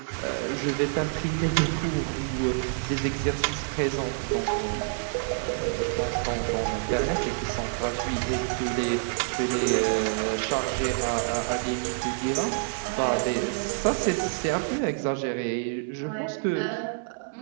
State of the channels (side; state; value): left; silent; digital silence